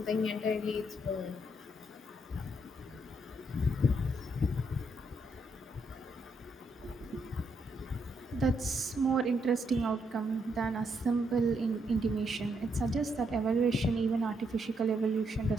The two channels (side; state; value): both; normal; correlation 0.76